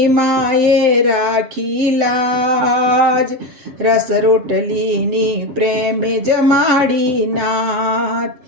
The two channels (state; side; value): late; left; 7.9 ms